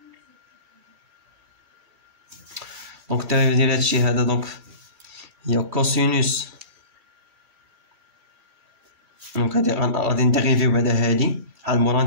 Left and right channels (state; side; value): late; left; 2.3 ms